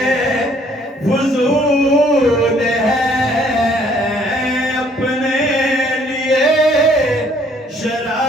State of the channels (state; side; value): normal; both; correlation 0.62